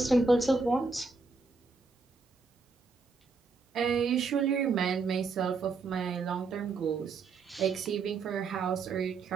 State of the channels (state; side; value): quieter; left; 4.3 dB